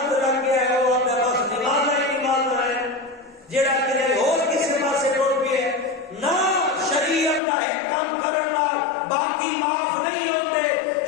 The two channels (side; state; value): right; drops out; at 7.4 s